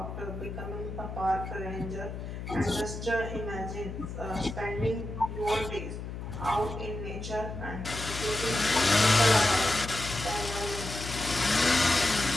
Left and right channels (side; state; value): left; noise; hum, 8 dB below the sound